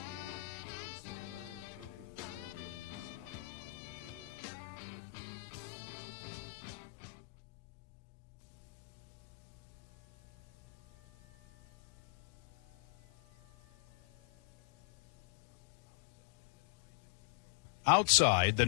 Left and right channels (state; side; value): quieter; right; 26.9 dB